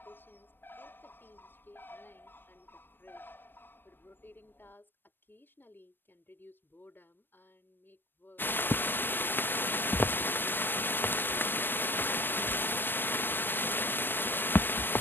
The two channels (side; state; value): right; late; 0.096 ms